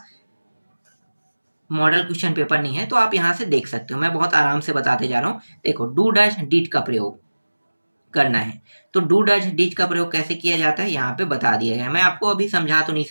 मॉडल क्वेश्चन पेपर नहीं है तो आप यहाँ से देख सकते हो, मैं बहुत आराम से बताते जा रहा हूँ। देखो, डू डैश डिड का प्रयोग करना है, तो डू डैश डिड का प्रयोग कैसे किया जाता है यहाँ पे बता दिया गया है। मैं आपको अभी समझा तो नहीं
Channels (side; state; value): both; inverted; correlation -1.00